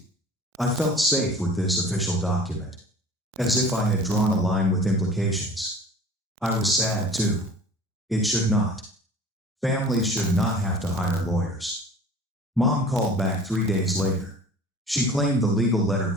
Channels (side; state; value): both; normal; correlation 0.44